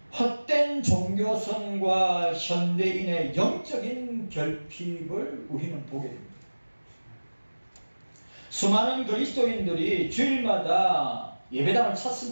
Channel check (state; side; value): inverted; both; correlation -1.00